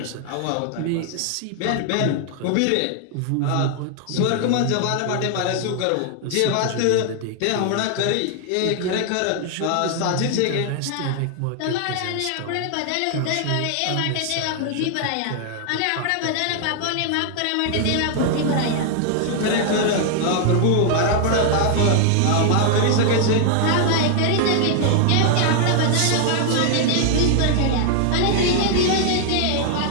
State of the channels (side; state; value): both; different; correlation 0.00